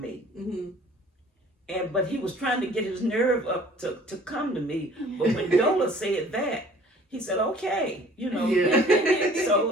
But he was trying to get his nerve up to come to me. But when Dola said that, he said, okay, Yeah.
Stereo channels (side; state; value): both; normal; correlation 0.51